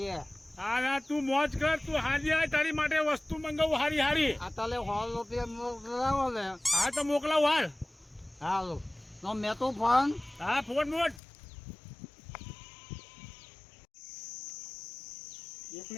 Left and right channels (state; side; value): drops out; right; at 11.2 s